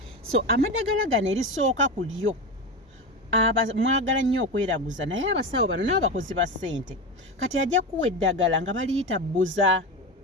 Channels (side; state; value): both; normal; correlation 0.21